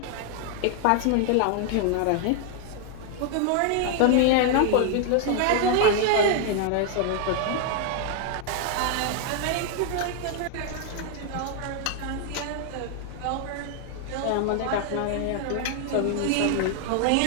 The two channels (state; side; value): different; both; correlation 0.00